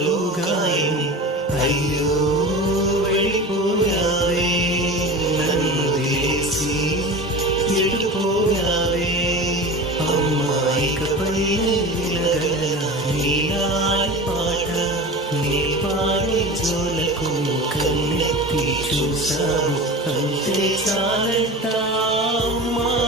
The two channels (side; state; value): both; normal; correlation 0.32